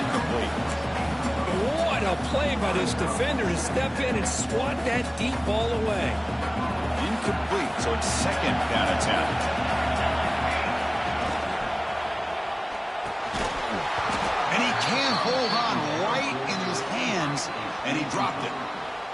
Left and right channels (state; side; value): identical; both; correlation 1.00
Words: What a play by this defender to step in and swat that deep ball away. Incomplete, so it's second down and 10. And he can't hold on right in his hands, and he dropped it.